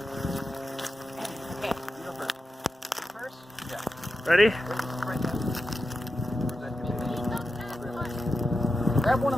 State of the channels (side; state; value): both; normal; correlation 0.90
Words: Okay, you go first. First? Yeah. Ready? Right there. Grab one